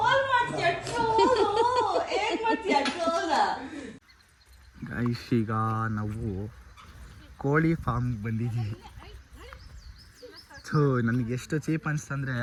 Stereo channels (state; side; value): identical; both; correlation 1.00